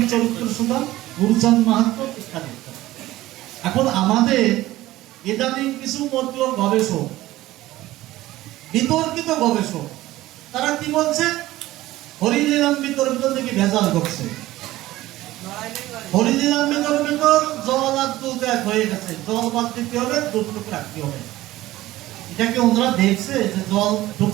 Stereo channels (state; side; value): quieter; left; 16.4 dB